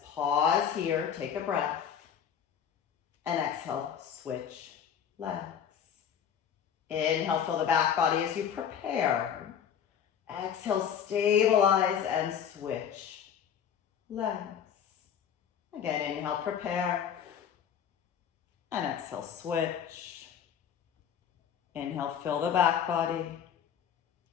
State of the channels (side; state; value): right; quieter; 8.4 dB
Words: Pause here, take a breath. And exhale, switch legs. Inhale, fill the back body as you prepare. Exhale, stabilize and switch legs. Again, inhale, prepare. And exhale, switch. Inhale, fill the back body.